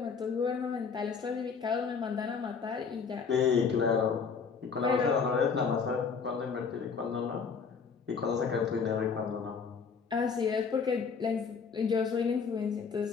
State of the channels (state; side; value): quieter; right; 5.8 dB